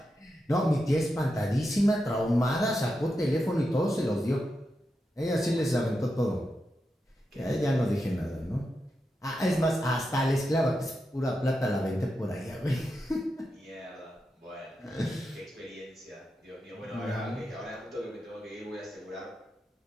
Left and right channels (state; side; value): normal; both; correlation 0.88